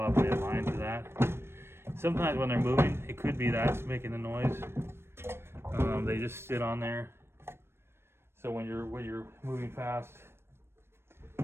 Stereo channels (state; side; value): late; left; 0.12 ms